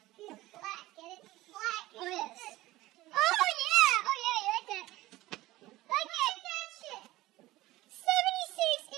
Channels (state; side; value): quieter; left; 17.6 dB